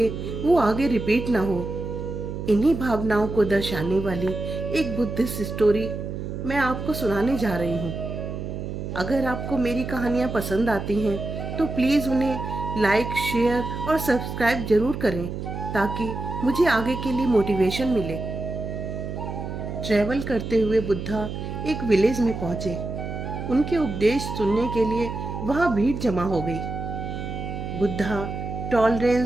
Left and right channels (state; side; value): noise; right; hum, 6 dB below the sound